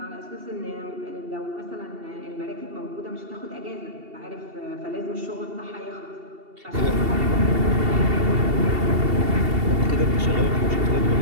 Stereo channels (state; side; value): late; left; 2.7 ms